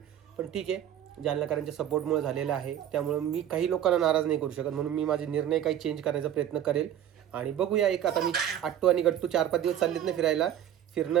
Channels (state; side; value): quieter; left; 10.8 dB